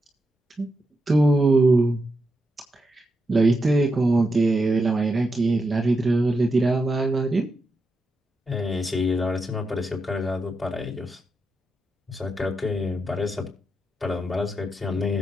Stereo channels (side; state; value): both; normal; correlation 0.86